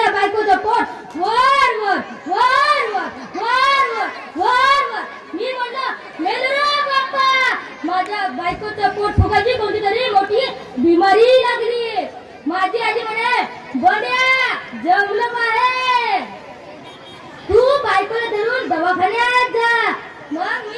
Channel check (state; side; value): identical; both; correlation 1.00